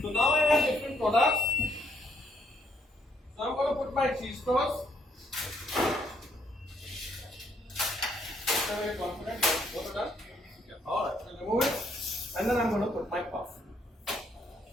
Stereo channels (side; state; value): both; normal; correlation 0.71